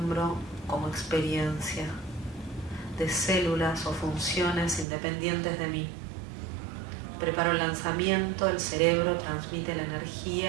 como experiencia, de células o funciones independientes de mí. Preparo el lanzamiento, el cerebro transmite la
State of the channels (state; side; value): drops out; left; at 4.9 s